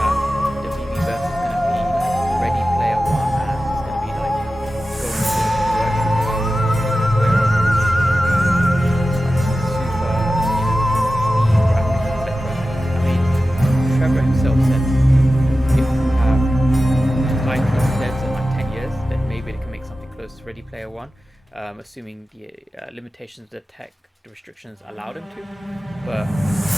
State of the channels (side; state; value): both; normal; correlation 0.94